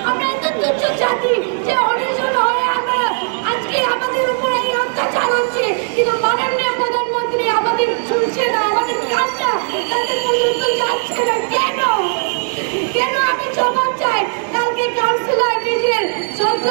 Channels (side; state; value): left; silent; 60 dB below the other